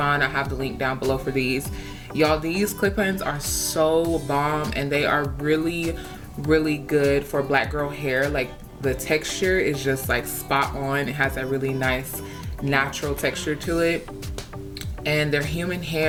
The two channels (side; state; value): both; identical; correlation 1.00